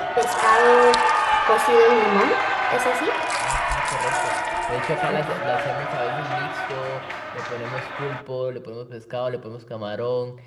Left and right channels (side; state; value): both; identical; correlation 1.00